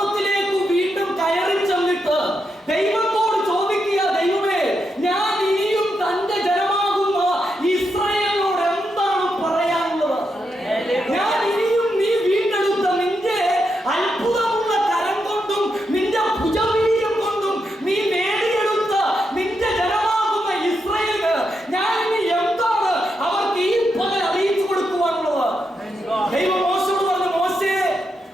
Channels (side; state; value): both; normal; correlation 0.83